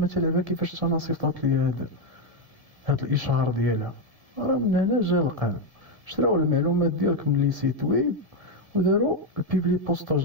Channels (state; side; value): late; left; 1.9 ms